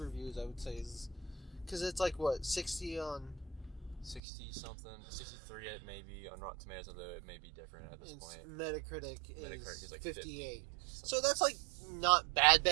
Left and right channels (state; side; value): drops out; left; at 4.2 s